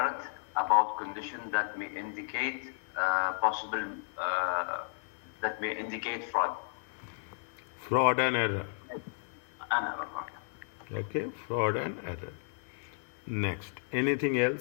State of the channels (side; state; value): right; silent; 55 dB below the other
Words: about conditions that may indicate fraud. Fraud and error. And error. Okay, fraud and error. Next, anything